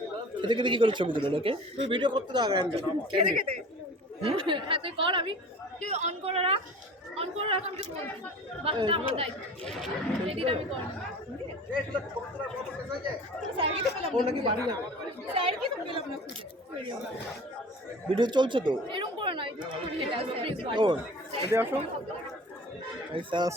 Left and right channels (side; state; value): both; normal; correlation 0.41